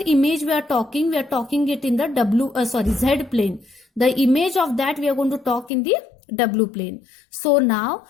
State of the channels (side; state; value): right; drops out; at 5.7 s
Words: image we are talking it in the Z plane. The image of that we are going to talk in the W plane. So now